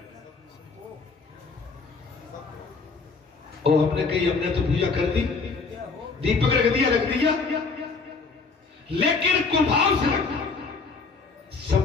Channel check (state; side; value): quieter; right; 4.4 dB